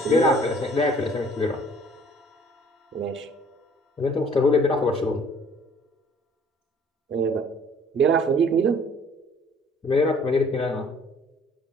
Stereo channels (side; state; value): both; normal; correlation 0.56